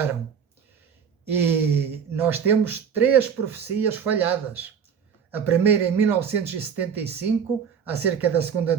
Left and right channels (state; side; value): quieter; left; 7.2 dB